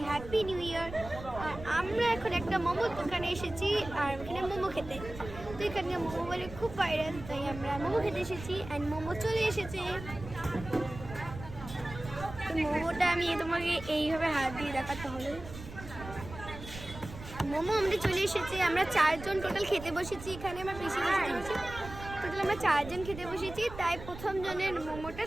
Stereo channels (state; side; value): noise; right; rumble, 12 dB below the sound